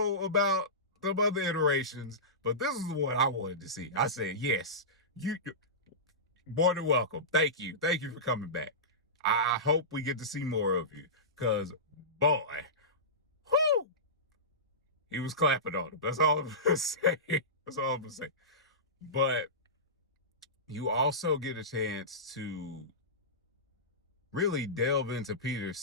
about some other iterations, but this is what I wanted to see. I said, yes, you more than welcome. Thank you. Thank you for coming back. I hope we get to see more of you. Because, boy, whoo, he was clapping on him. That's all I'm going to say. That's all I'm going to say. But you also get a chance to really delve into Peter's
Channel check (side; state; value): both; normal; correlation -0.19